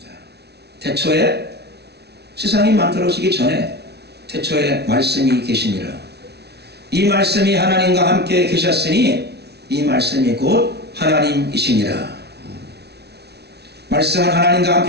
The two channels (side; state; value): left; late; 0.49 ms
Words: 태초에 세상이 만들어지기 전에 태초에 말씀이 계시니라. 이 말씀이 하나님과 함께 계셨으니 이 말씀이 곧 하나님이시니라. 말씀은 하나님과